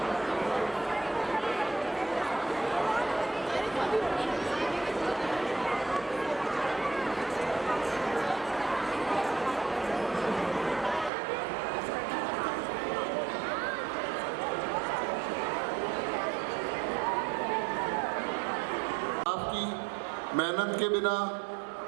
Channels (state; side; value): drops out; left; at 11.1 s